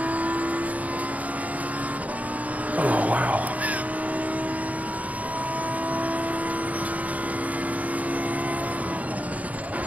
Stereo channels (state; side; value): late; left; 0.071 ms